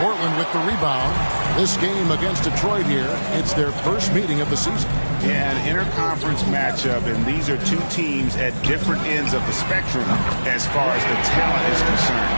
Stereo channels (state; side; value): inverted; both; correlation -1.00